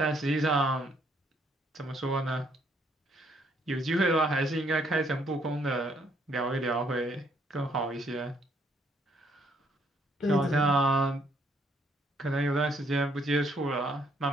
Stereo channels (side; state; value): both; normal; correlation 0.69